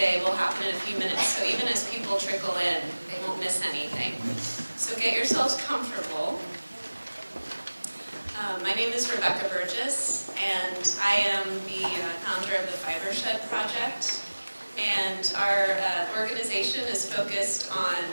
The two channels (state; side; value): inverted; both; correlation -1.00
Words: will happen in a few minutes, so even as people trickle in, they won't miss anything. So get yourselves comfortable. My name is Burgess, and I am the founder of the Fibershed project. And our organization is focused on